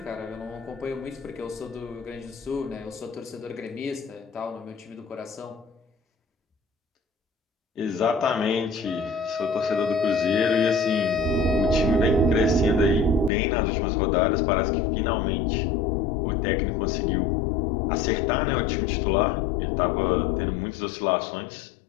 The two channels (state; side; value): drops out; right; at 13.3 s